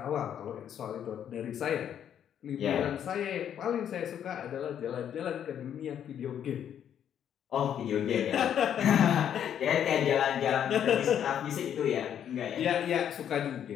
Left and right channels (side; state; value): right; quieter; 9.4 dB